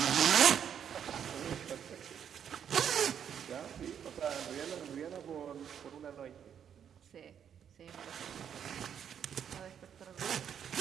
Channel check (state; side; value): quieter; left; 8.5 dB